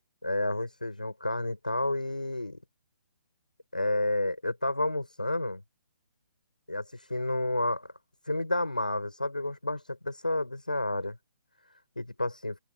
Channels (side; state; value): both; inverted; correlation -0.90